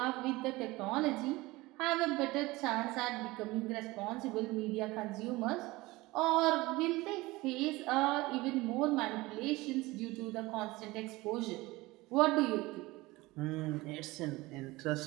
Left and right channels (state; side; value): quieter; left; 20.8 dB